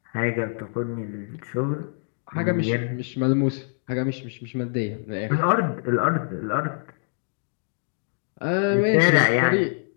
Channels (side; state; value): right; silent; digital silence